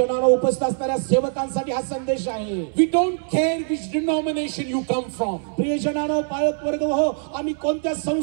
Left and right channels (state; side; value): silent; left; digital silence